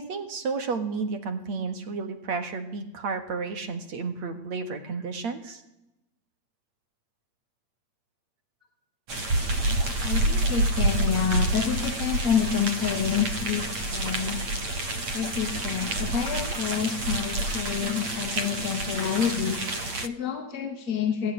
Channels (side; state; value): left; late; 8.7 ms